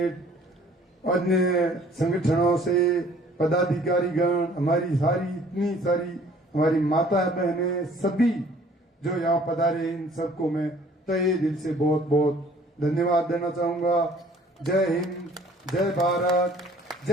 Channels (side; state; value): both; normal; correlation 0.55